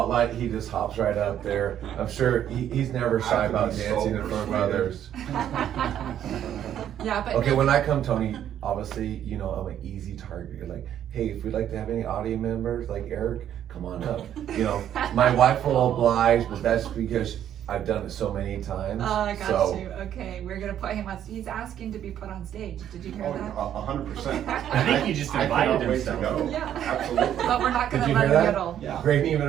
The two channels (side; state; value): left; quieter; 10.4 dB